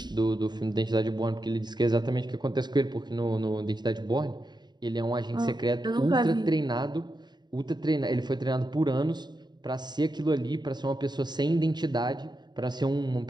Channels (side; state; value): left; late; 0.21 ms